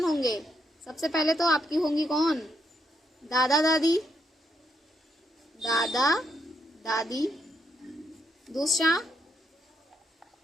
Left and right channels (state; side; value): normal; both; correlation 0.78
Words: होंगे? सबसे पहले तो आपकी होंगी कौन? दादा दादी। दूसरा